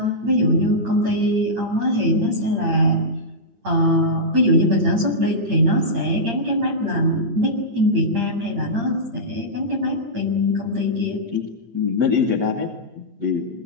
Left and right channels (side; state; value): left; late; 8.7 ms